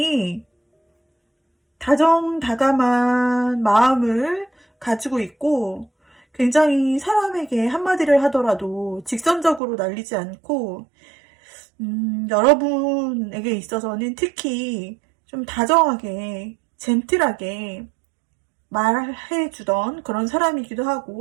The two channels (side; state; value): left; drops out; at 9.6 s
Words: 다정다감한 마음을 가지고 있고 굉장히 사람에게 한마디를 하더라도 직선적으로 날리지 않고 여러분에게 있어서는 특히 좀 다정하게 젠틀하게 말해주던 그런 사람이기도